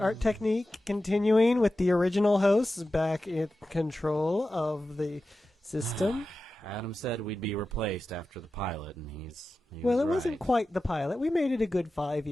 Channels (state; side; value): normal; both; correlation 0.93